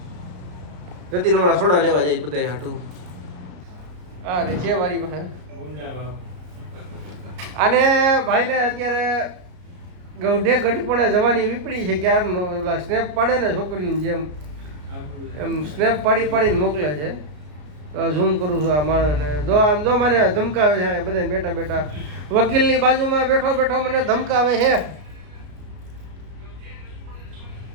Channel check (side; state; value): left; late; 34 ms